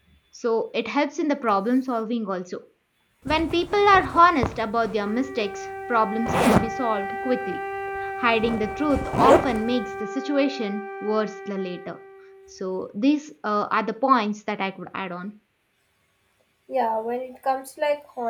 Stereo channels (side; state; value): both; identical; correlation 1.00